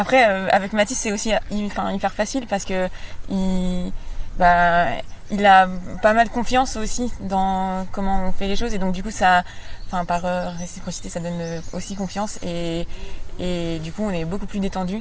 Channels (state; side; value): identical; both; correlation 1.00